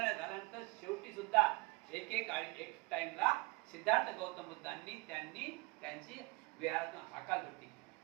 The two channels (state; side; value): quieter; left; 26.1 dB